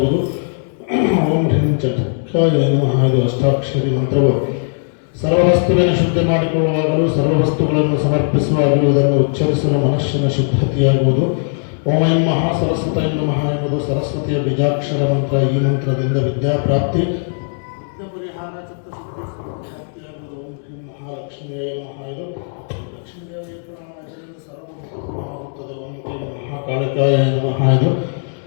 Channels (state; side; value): silent; right; 64 dB below the other